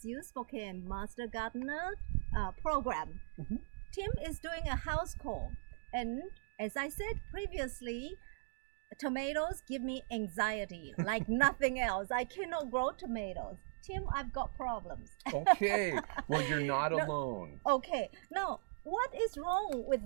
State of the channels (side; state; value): left; silent; digital silence